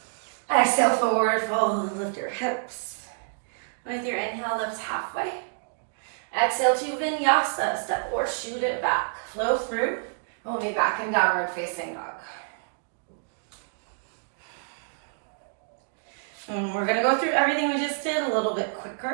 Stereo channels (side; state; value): left; silent; digital silence